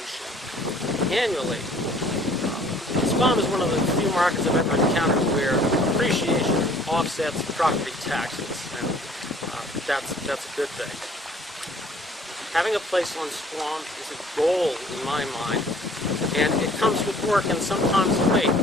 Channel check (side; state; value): both; normal; correlation 0.55